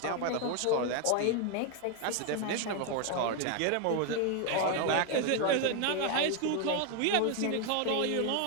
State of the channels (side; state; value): both; different; correlation 0.01